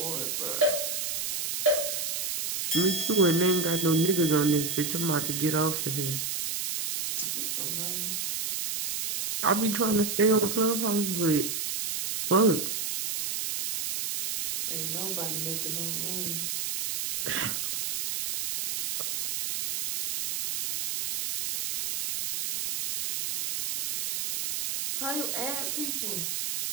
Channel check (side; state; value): right; noise; hiss, 2 dB below the sound